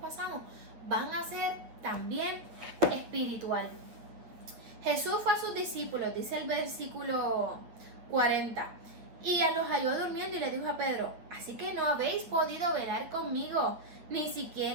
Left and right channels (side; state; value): left; late; 8.9 ms